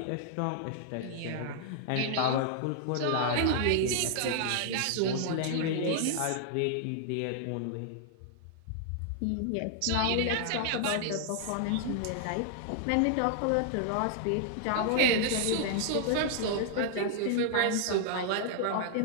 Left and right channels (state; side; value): different; both; correlation 0.00